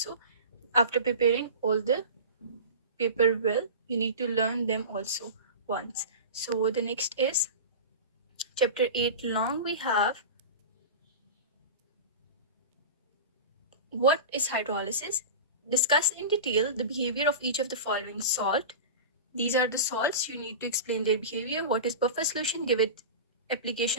After preparing all the paper well, you need to learn them also once. So the next is chapter 8 long we have, what is hydrolysis? Discuss in detail the behavior of each of the following salt. These are the salts. You need to explain their behavior. What is buffer solution? Give it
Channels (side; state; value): both; inverted; correlation -0.30